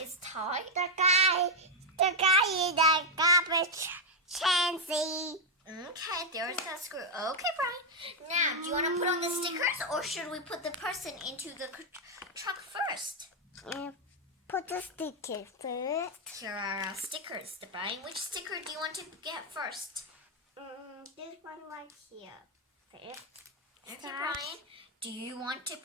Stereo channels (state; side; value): normal; both; correlation 0.00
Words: is tight. The guy in the garbage chancy. Okay, there's that screw. Okay, Brian. Now, do you want to put on the stickers or should we put the person into the truck first? Put the sticker first. Here are our stickers. Brian, which sticker do you want to get first? This one right here. First. Okay, Brian. Do you want to